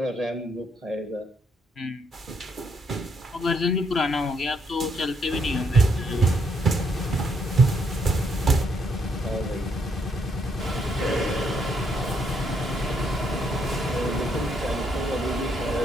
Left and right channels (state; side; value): normal; both; correlation 0.74